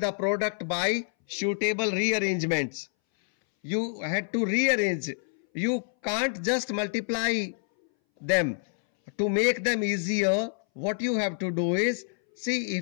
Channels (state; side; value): silent; right; 60 dB below the other